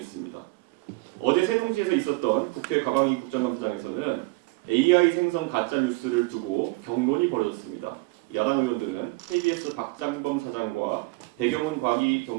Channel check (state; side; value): quieter; left; 25.0 dB